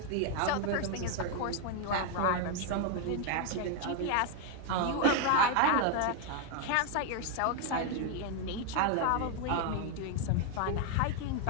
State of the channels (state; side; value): different; both; correlation 0.01